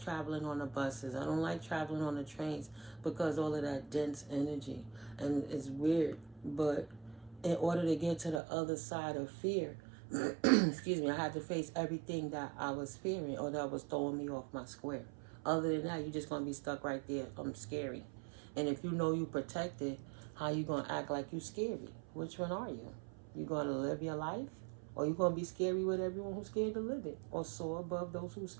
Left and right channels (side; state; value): left; drops out; at 8.4 s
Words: traveling on the buses. I don't like traveling on the trains because all of that dense energy. And it's weird. But in order to get to the other side of fear, excuse me, I had to face everything that I was fearing or that was throwing me off my square. Other than that, you're just going to be stuck right there. I'm scary. And if you know you protected, how you going to act like you scary? Which one are you? You going to live your life? Or you going to be scary with everyone who's scared to live it? Or soar above those who's